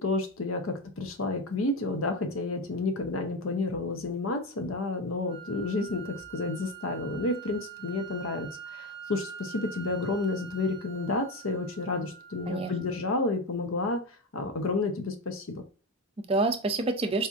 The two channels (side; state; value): both; normal; correlation 0.17